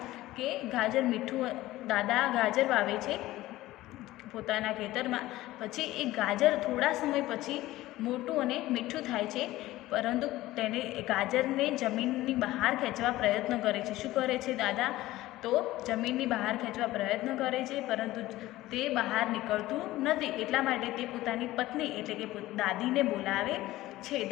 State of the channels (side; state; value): right; quieter; 16.7 dB